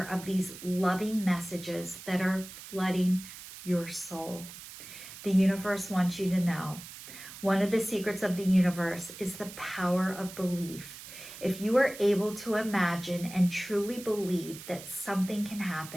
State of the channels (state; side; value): noise; right; hiss, 14 dB below the sound